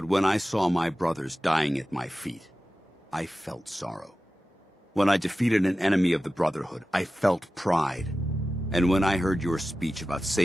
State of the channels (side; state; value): both; normal; correlation 0.95